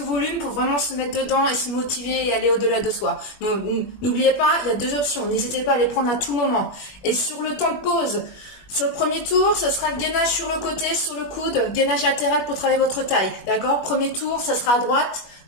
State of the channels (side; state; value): right; late; 21 ms